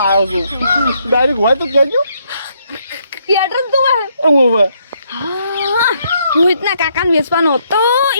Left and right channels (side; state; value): both; inverted; correlation -0.73